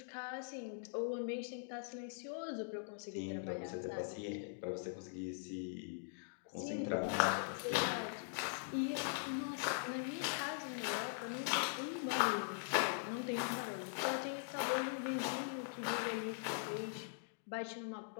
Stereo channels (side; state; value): right; silent; digital silence